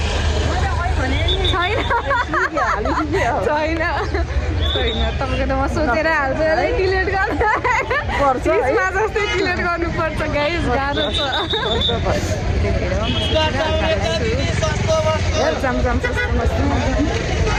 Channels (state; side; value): identical; both; correlation 1.00